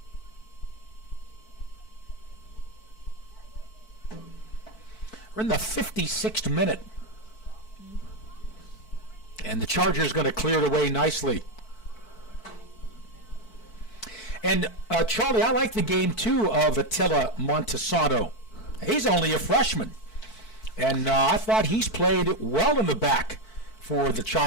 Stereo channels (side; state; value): right; late; 4.5 ms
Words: We're in the 56th minute. And the Chargers going to clear it away nicely. And, Charlie, I like the game, too, of Attila Montesano. He's only a freshman. And I thought he's played well in the back for the